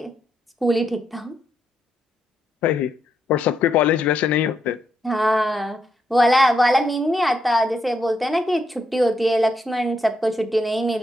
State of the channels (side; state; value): both; normal; correlation 0.79